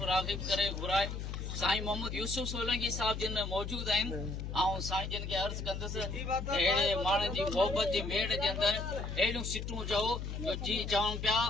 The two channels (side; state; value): left; noise; hum, 5 dB below the sound